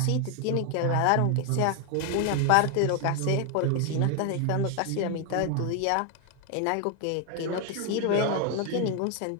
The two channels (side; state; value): both; different; correlation 0.01